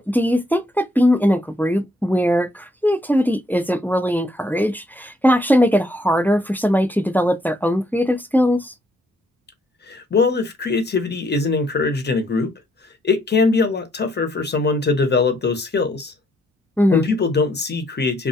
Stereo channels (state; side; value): normal; both; correlation 0.71